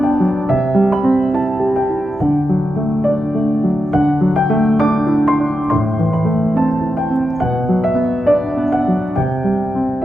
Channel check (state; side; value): normal; both; correlation 0.89